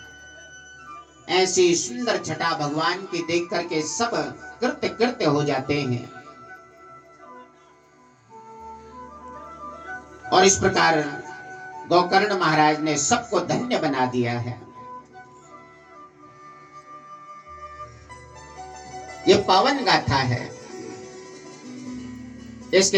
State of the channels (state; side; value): identical; both; correlation 1.00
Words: ऐसी सुंदर छटा भगवान की देख करके सब कृत्य कृत्य हो जाते हैं। और इस प्रकार गोकर्ण महाराज ने सबको धन्य बना दिया है। ये पावन गाथा है,